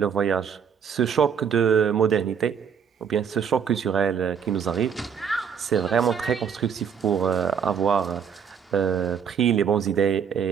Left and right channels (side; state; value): left; quieter; 7.3 dB